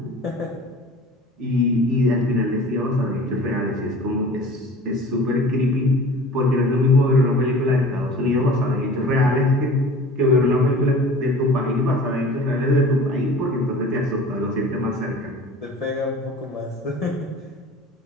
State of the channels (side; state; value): both; normal; correlation 0.42